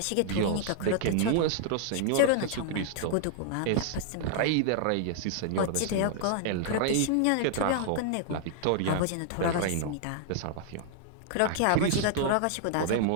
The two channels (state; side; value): different; both; correlation -0.01